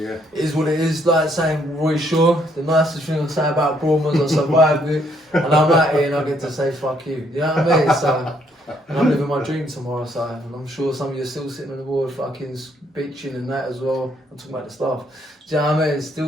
is what it is. Like saying Roy Shaw, the nicest thing I say about Broadmoor is I survived it, and I'm out here and I get to say fuck you. You know what I mean? So. And I'm living my dream tomorrow, so and I'm sure some of you are still sitting on the board fucking bitching and that as well. I'm talking about the stuff. Do you know what I mean?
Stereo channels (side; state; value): both; normal; correlation 0.70